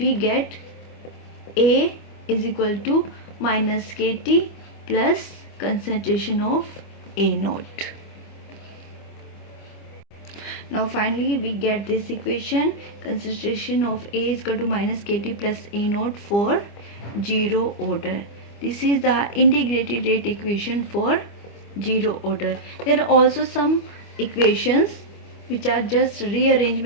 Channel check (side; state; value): right; late; 25 ms